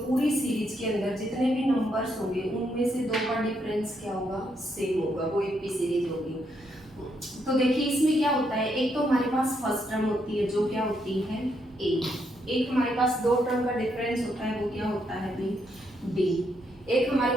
पूरी सीरीज के अंदर जितने भी नंबर्स होंगे उनमें से दो का डिफरेंस क्या होगा, सेम होगा, वो एपी सीरीज होगी। तो देखिए इसमें क्या होता है, एक तो हमारे पास फर्स्ट टर्म होती है जो क्या होती है a, एक हमारे पास दो टर्म का डिफरेंस होता है वो क्या होता है b, एक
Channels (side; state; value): both; normal; correlation 0.77